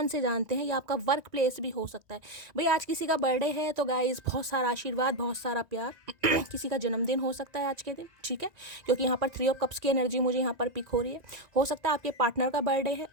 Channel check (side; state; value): left; late; 1.9 ms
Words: से जानते हैं, या आपका वर्क प्लेस भी हो सकता है। भाई आज किसी का बर्थडे है तो गाइस बहुत सारा आशीर्वाद, बहुत सारा प्यार। किसी का जन्मदिन हो सकता है आज के दिन, ठीक है, क्योंकि यहाँ पर 3 ऑफ कप्स की एनर्जी मुझे यहाँ पर पिक हो रही है। हो सकता है आपके पार्टनर का बर्थडे